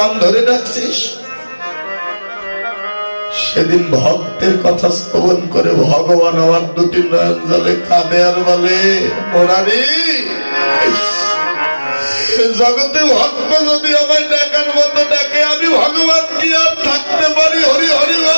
ধরে ডাকছিস? সেদিন ভক্তের কথা শ্রবণ করে ভগবান আমার দুটি নয়ন জলে কাঁদে আর বলে, মুরারি জগতে ভক্ত যদি আমায় ডাকার মতো ডাকে, আমি ভগবান কি আর থাকতে পারি? হরি হরি হরি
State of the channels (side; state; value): both; inverted; correlation -1.00